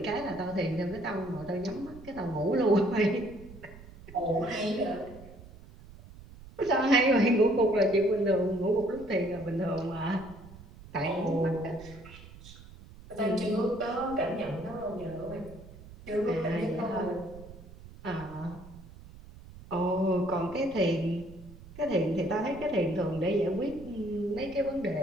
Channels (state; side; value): noise; right; rumble, 18 dB below the sound